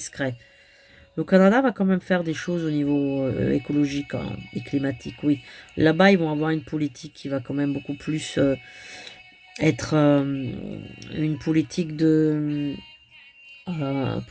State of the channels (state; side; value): identical; both; correlation 1.00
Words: Le Canada va quand même faire des choses au niveau écologique, hein, et climatique, oui. Là-bas, ils vont avoir une politique qui va quand même beaucoup plus être une politique de